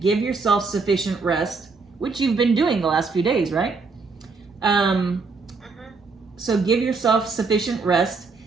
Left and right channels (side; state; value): left; quieter; 4.4 dB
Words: Give yourself sufficient rest, which you've been doing the last few days, right? So give yourself sufficient rest,